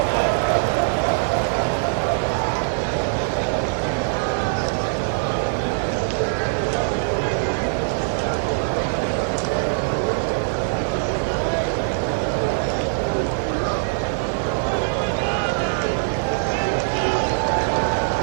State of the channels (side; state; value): left; silent; digital silence